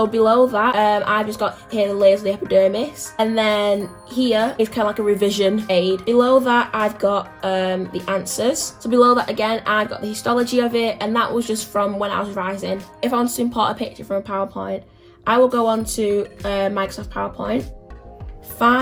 below that, I've just got here the layers of the epidermis. And then here is kind of like a revision aid. Below that, I've got the answers. So below that again, I've got the histology of it. And that was just from when I was revising. If I want to import a picture from a PowerPoint, I will go on to Microsoft PowerPoint,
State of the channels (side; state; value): both; identical; correlation 1.00